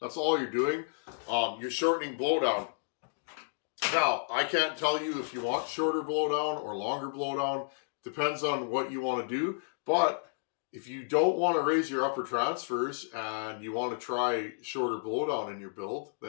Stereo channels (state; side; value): silent; right; digital silence